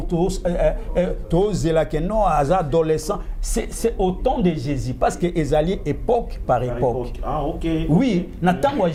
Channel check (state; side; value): identical; both; correlation 1.00